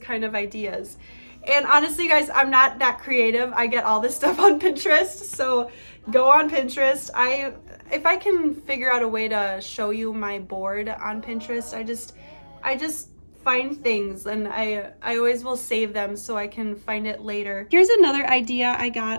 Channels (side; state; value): both; inverted; correlation -1.00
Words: of ideas. And honestly, guys, I'm not that creative. I get all this stuff on Pinterest, so go on Pinterest. If I can figure out a way to show you my board on Pinterest, I just find things, and I always will save them so I can find it later. Here's another idea I